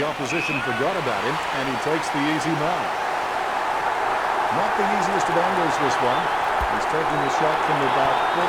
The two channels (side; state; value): both; identical; correlation 1.00